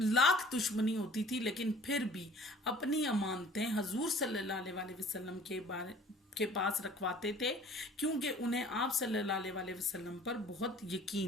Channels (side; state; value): both; normal; correlation 0.50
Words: دشمنی ہوتی تھی لیکن پھر بھی اپنی امانتیں حضور صلی اللہ علیہ وسلم کے پاس رکھواتے تھے، کیونکہ انہیں آپ صلی اللہ علیہ وسلم پر بہت